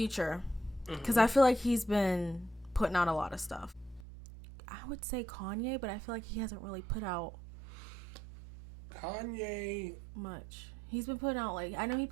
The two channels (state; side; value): drops out; left; at 4.0 s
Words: Because I feel like he's been putting out a lot of stuff. I would say Kanye, but I feel like he hasn't really put out Kanye. much. He's been putting out, like, I know he